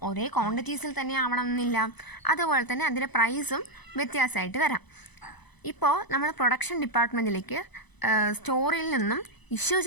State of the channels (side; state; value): right; late; 0.99 ms